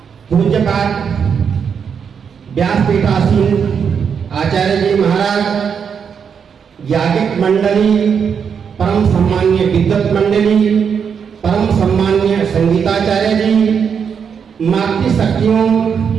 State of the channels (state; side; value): quieter; left; 6.9 dB